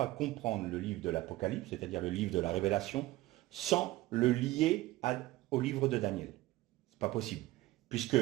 comprendre le livre de l'Apocalypse, c'est-à-dire le livre de la Révélation, sans le lier au livre de Daniel. C'est pas possible, puisque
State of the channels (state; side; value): quieter; left; 17.7 dB